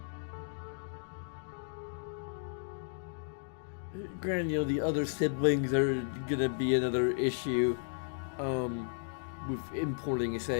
Granted, the other siblings are gonna be another issue with importing a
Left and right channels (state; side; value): silent; right; digital silence